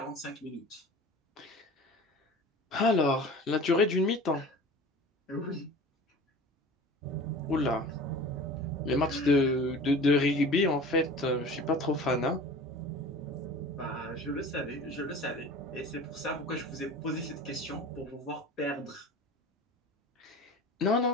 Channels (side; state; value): both; normal; correlation 0.39